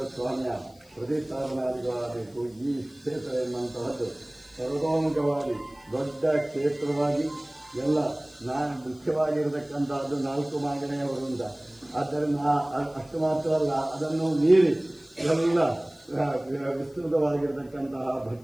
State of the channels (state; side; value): noise; left; hiss, 29 dB below the sound